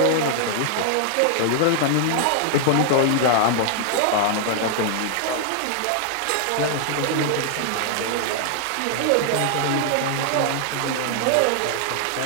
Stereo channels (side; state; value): both; different; correlation 0.00